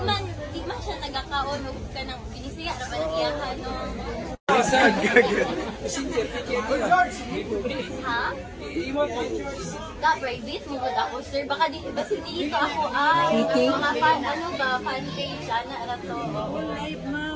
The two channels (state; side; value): identical; both; correlation 1.00